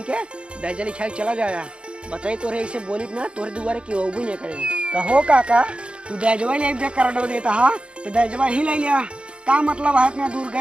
के डैजा लिखाया चला जाया। बताई तोरे ऐसे बोली ना तोरे दुआरे की वो भी नहीं करे। कहो काका तू दैजवा ले कर देता हा तो दैजवा ही ले लिया। का मतलब है इतना दूर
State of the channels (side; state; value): left; late; 0.056 ms